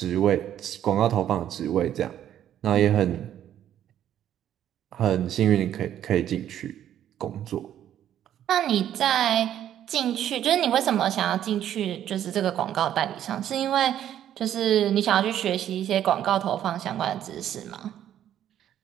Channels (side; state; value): left; quieter; 10.9 dB